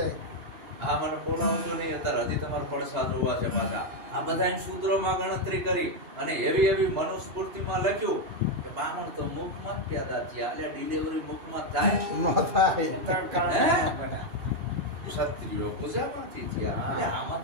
હા, મને બોલાવજો નહીં અત્યારે, હજી તમારા પડસા જોવા છે પાછા. આ બધા શૂદ્રોમાં ગણતરી કરી અને એવી એવી મનુસ્મૃતિમાં લખ્યું કે બ્રાહ્મણ તો મુખમાં જ પેદા થયા, એટલે ડિલિવરી મુખમાં થાય. ક્ષત્રિયો પૂજામાંથી થયા, એટલે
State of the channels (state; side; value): late; left; 2.9 ms